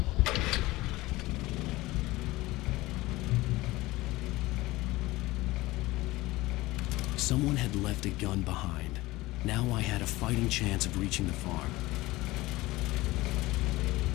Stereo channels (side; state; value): right; quieter; 19.4 dB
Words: Someone had left a gun behind. Now I had a fighting chance of reaching the farm.